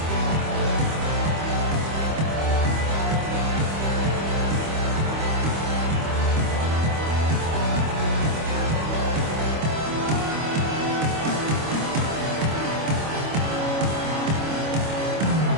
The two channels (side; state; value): left; late; 25 ms